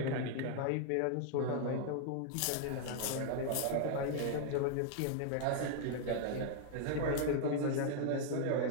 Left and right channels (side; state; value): both; different; correlation 0.00